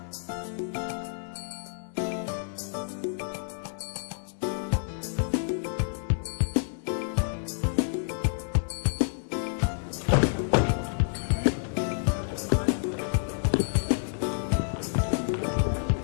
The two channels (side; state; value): right; silent; 59 dB below the other